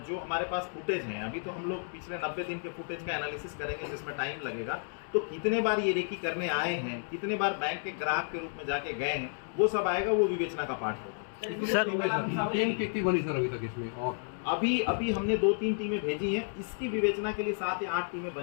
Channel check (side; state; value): right; silent; 57 dB below the other